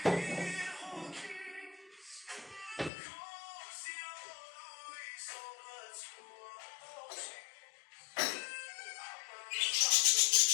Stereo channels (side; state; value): right; drops out; at 2.9 s